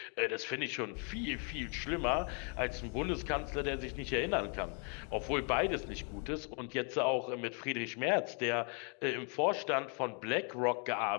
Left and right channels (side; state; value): right; quieter; 38.8 dB